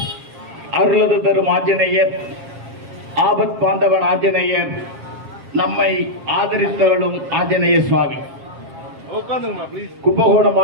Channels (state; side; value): late; left; 7.5 ms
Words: அருளது தரும் ஆஞ்சநேயர், ஆபத் பாந்தவன் ஆஞ்சநேயர், நம்மை ஆதரித்தவளும் ஆஞ்சநேய சுவாமி. கும்பகோணம்